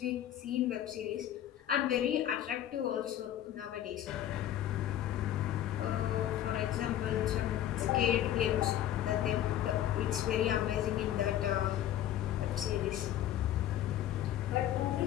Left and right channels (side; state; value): right; quieter; 11.8 dB